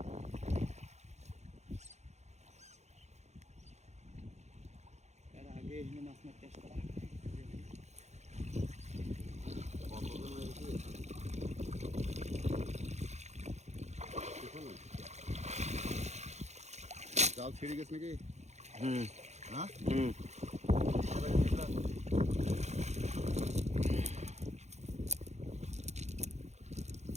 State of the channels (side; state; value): left; late; 0.33 ms